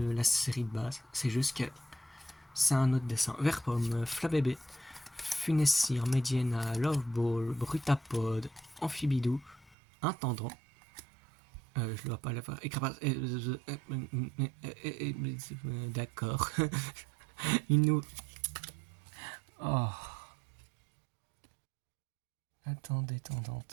la série de base. C'est juste que c'est un autre dessin. Vert pomme, Flabébé, Funessir, Mediana, Loveball, Brutapod, Amphibidou, Intendant. Je dois pas l'avoir. D'accord. Une nous. Oh. Attendez.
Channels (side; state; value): left; drops out; at 9.8 s